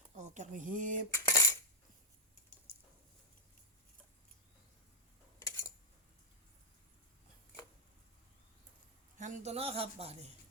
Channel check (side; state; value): both; normal; correlation -0.05